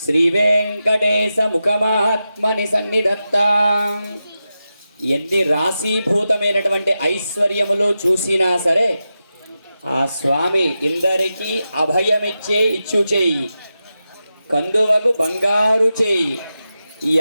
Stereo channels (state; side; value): inverted; both; correlation -0.91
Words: శ్రీ వెంకటేశ ముఖమాత్మని సన్నిధత్తాం. ఎన్ని రాశీభూతమైనటువంటి ఐశ్వర్యములు చూసినా సరే ఆ స్వామి ఇందరికీ అభయమిచ్చే ఇచ్చు చేయి, కందువకు బంగారు చేయి.